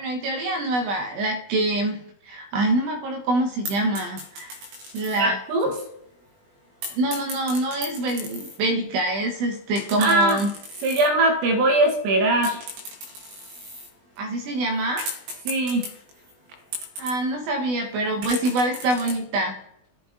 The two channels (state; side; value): late; left; 20 ms